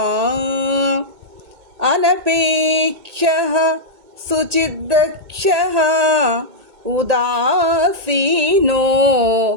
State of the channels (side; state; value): left; late; 1.8 ms